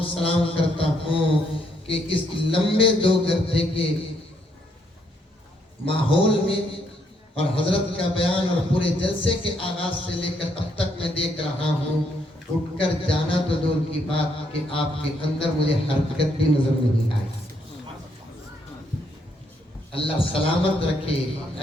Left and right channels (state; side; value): normal; both; correlation 0.73